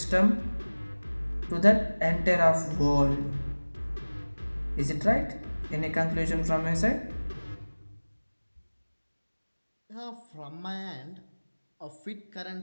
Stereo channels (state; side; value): inverted; both; correlation -1.00